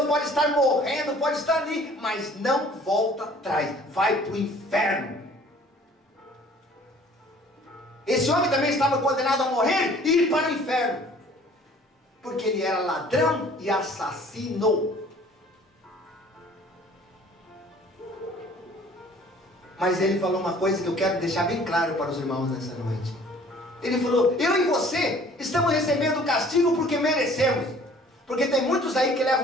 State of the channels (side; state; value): both; normal; correlation 0.53